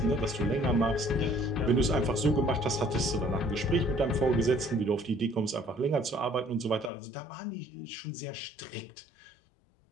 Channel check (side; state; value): right; drops out; at 6.9 s